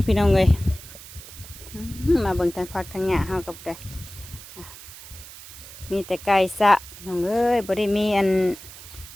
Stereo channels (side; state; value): right; noise; hiss, 16 dB below the sound